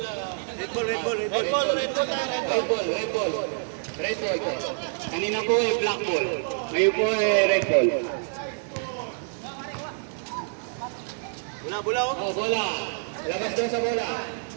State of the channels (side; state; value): left; silent; 60 dB below the other